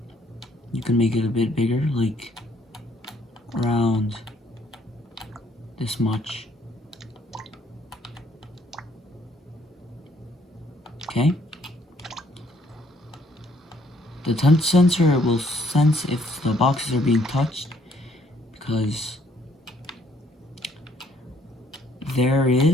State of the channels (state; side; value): normal; both; correlation 0.66